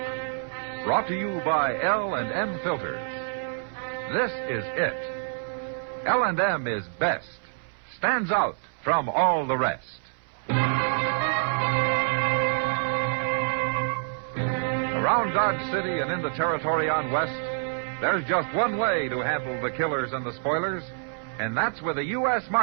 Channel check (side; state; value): left; silent; 60 dB below the other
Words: Brought to you by L&M Filters. This is it. L&M is best. Stands out from all the rest. Around Dodge City and in the territory on West, there's just one way to handle the killers and the spoilers, and that's with a U.S.